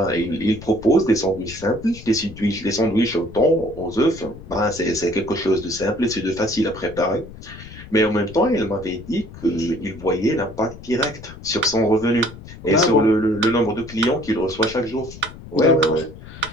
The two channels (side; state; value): left; noise; rumble, 16 dB below the sound